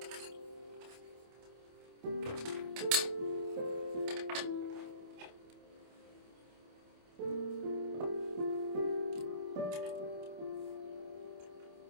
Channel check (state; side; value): late; left; 27 ms